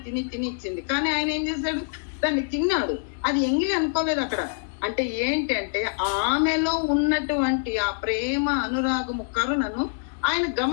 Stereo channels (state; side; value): silent; right; digital silence